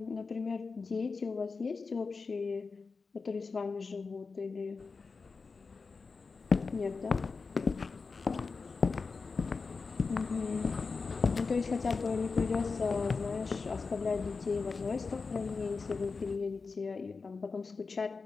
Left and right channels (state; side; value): quieter; right; 4.5 dB